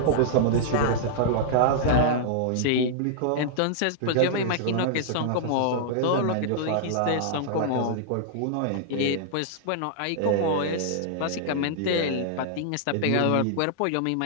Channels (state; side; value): different; both; correlation -0.01